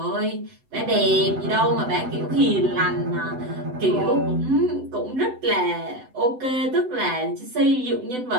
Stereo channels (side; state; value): left; late; 7.9 ms